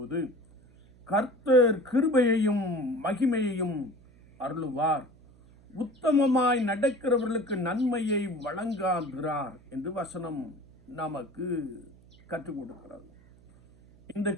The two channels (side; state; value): right; noise; hum, 26 dB below the sound